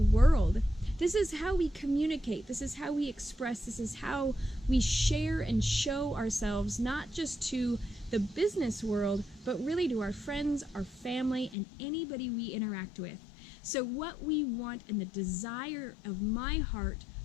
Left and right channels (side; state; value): right; drops out; at 11.6 s